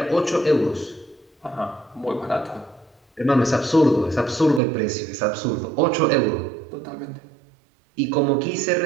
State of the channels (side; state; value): left; drops out; at 4.6 s